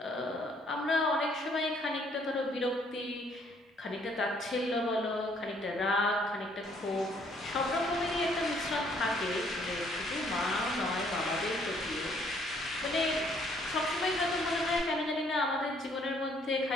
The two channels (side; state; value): both; normal; correlation 0.64